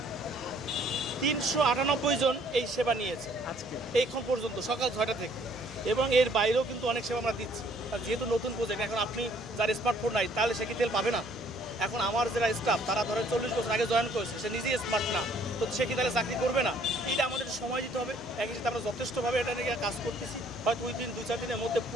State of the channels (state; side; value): noise; right; hum, 24 dB below the sound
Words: 398 জন এই সেবা নিয়েছে আজকে এইখন পর্যন্ত সকাল 6টা থেকে, এবং এর বাইরেও কিন্তু অনেক সেবা আমরা দিচ্ছি। আর যেহেতু নতুন প্রজেক্ট, এখন আপনি যার স্মার্টফোন নাই তাহলে সে কি তেল পাবে না? এখন আমার যারা স্টাফ তারা ধরেন 40 বছর আগে জয়েন করেছে, সে নিজেই স্মার্ট না, তো সে কি তাহলে চাকরি করবে না? এটা আমাদের সময় দিতে হবে। একই সাথে আমরা যথেষ্টভাবে এটা নিয়ে কাজ করতেছি। হয়তো ওই দিন 2-4 দিনের মধ্যে